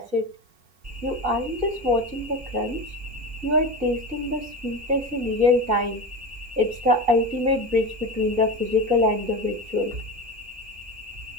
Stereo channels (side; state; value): left; late; 3.9 ms